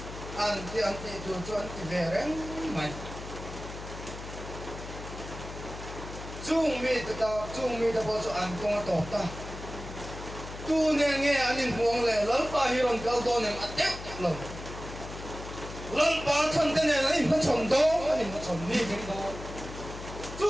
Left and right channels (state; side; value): noise; left; hum, 11 dB below the sound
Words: ăn thì chuan thì về đấy mày chung mi ta bao giờ ăn công tổ ta tu nghe anh nhìn huống lệ lớn ba hi lòng cao to này ăn tiếp lòng lớn ba thân cái này anh nó chồng đó anh nó chồng đi cái đó